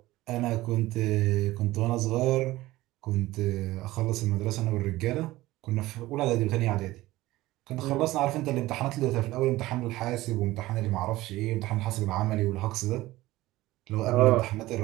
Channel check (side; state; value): left; quieter; 17.6 dB